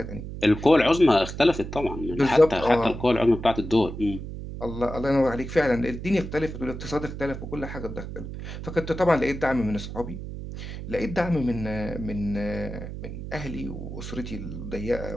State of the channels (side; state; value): right; noise; hum, 9 dB below the sound